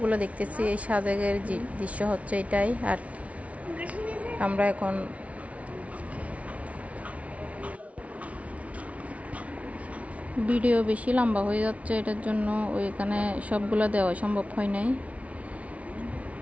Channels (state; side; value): late; left; 0.065 ms